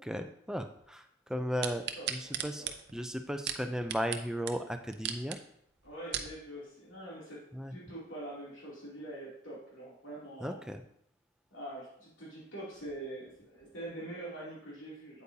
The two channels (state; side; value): normal; both; correlation 0.63